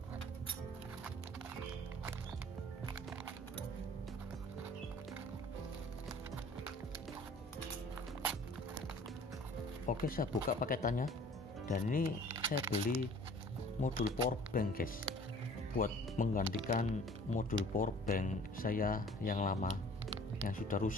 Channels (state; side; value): normal; both; correlation 0.50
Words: Oke, saya buka paketannya dan ini saya beli modul power bank guys, buat menggantikan modul power bank saya yang lama yang sudah